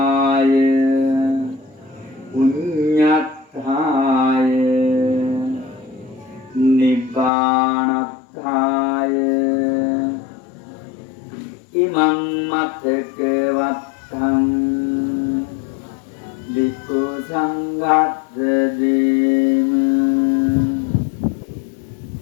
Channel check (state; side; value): drops out; right; at 7.3 s